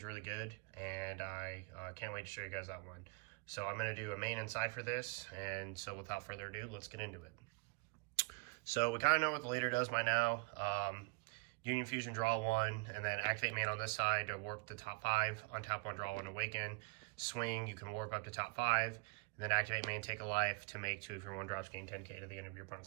really good, and I can't wait to show you guys that one. So I'm going to do a main and side for this, and so without further ado, let's get into it. So we kind of know what the leader does by now. Union Fusion, draw one, and then activate main on this side to warp the top 5, untap one, draw one, awaken. Swing, you can warp up to top 5, and then activate main, take a life to make 2 of your 1-drops, gain 10k to the end of your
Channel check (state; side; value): quieter; left; 27.9 dB